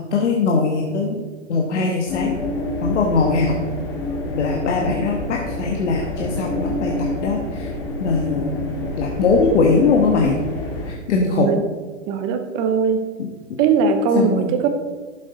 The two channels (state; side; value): normal; both; correlation 0.05